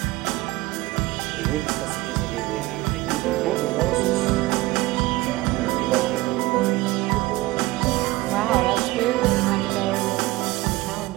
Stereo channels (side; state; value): left; quieter; 19.4 dB